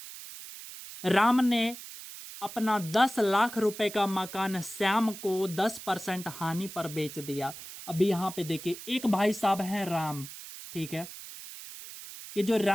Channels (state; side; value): noise; right; hiss, 13 dB below the sound